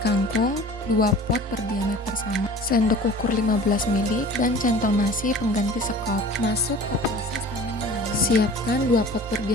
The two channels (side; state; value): both; normal; correlation 0.43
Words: 2 pot berdiameter sama, sendok ukur 15 ml, dan centong nasi pengganti sekop. Masuk ke proses tanam menanam. Siapkan 2 pot